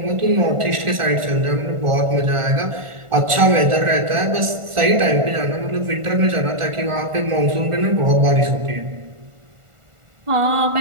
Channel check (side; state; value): left; late; 1.4 ms